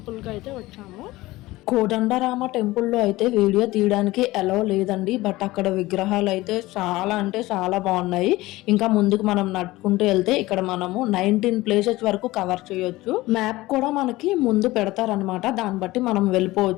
అయితే వచ్చాము. కోదండరామ టెంపుల్లో అయితే వీడియో తీయడానికి అలౌ లేదండి, బట్ అక్కడ విగ్రహాలు అయితే చాలా అంటే చాలా బాగున్నాయి. ఇంకా ముందుకు మనం నడుచుకుంటూ వెళ్తే ఇక్కడ మనము 19 ప్లేసెస్ వరకు కవర్ చేయొచ్చు. మ్యాప్ కూడా మనకి ముందు పెడతారనమాట, దాన్ని బట్టి మనం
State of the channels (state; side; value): quieter; right; 18.8 dB